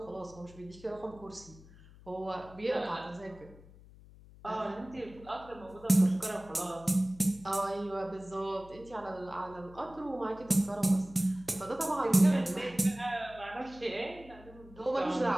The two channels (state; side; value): noise; left; hum, 21 dB below the sound